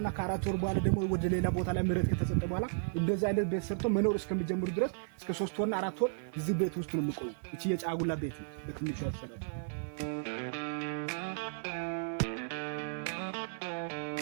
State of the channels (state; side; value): silent; left; 55 dB below the other